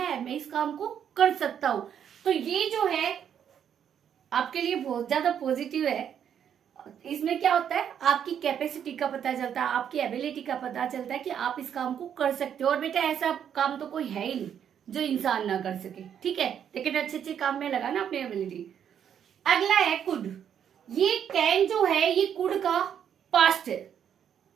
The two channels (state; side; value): quieter; left; 8.8 dB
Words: मैं इस काम को कर सकता हूं। तो ये जो है आपके लिए बहुत ज्यादा पॉजिटिव है। इसमें क्या होता है, आपकी कैपेसिटी का पता चलता है, आपकी एबिलिटी का पता चलता है कि आप इस काम को कर सकते हो। और बेटा ऐसा काम तो कोई है ही नहीं जो इंसान ना कर सके। ठीक है, लेकिन अच्छे अच्छे काम में लगा ना अपनी एबिलिटी। अगला है कुड। ये कैन जो है ये कुड का पास्ट है,